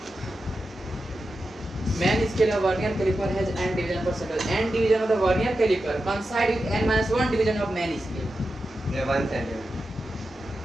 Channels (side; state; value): both; normal; correlation 0.90